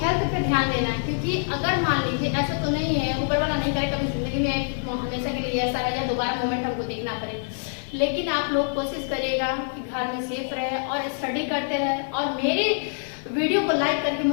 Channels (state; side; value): silent; right; digital silence